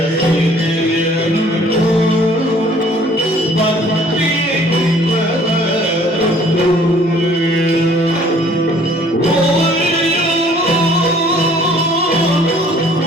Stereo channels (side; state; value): both; normal; correlation 0.56